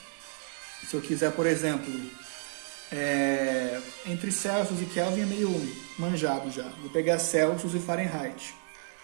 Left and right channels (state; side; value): silent; left; 57 dB below the other